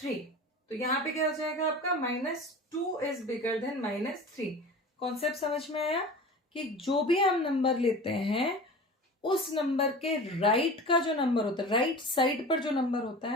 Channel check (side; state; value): both; normal; correlation 0.36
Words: तो यहाँ पे क्या हो जाएगा आपका, minus 2 is bigger than minus 3. Concept समझ में आया कि जो भी हम नंबर लेते हैं उस नंबर के राइट का जो नंबर होता है, राइट साइड पर जो नंबर होता